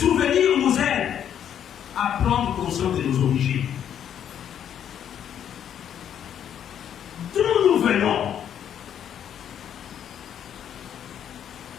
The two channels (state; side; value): quieter; right; 9.4 dB